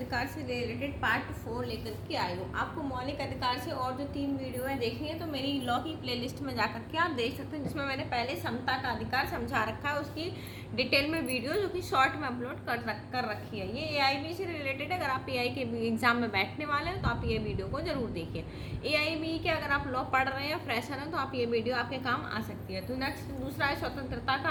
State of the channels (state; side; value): identical; both; correlation 1.00